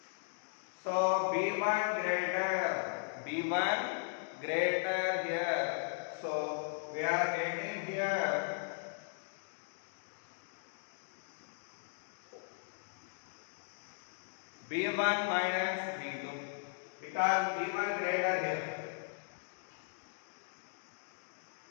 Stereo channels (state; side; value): silent; right; digital silence